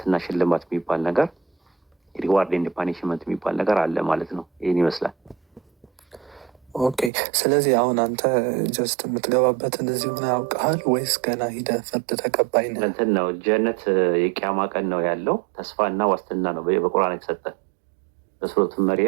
ሽልማት የሚባል ነገር ሪዋርድ ኤንድ ፓኒሽመንት የሚባል ነገር አለ ማለት ነው። ይህን ይመስላል። ኦኬ። ስለዚህ አሁን አንተ ጀስት የምትገባበትን እዚሁ ነው ያውቀሃል ወይስ ገና ሂደህ ፍርድ ተቀባይ ነህ? እንትን ነው ጀነት የቂያማ ቀን ነው ያለው ተስፋና ዋስትና ነው በቁርአን የተሰጠ። በሱረቱ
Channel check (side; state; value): left; drops out; at 7.1 s